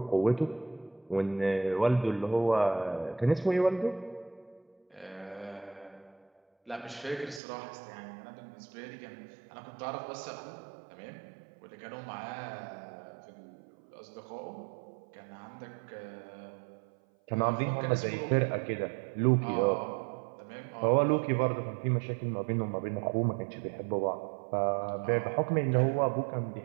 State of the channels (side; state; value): left; drops out; at 7.4 s